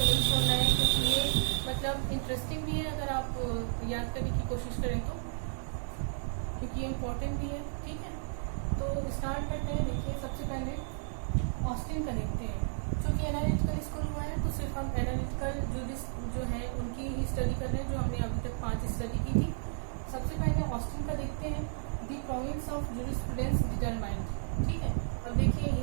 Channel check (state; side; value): silent; left; digital silence